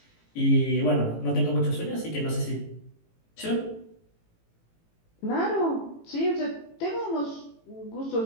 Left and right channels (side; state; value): right; late; 18 ms